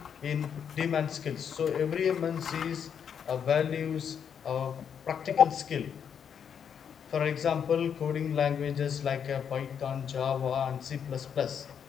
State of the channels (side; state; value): right; quieter; 7.7 dB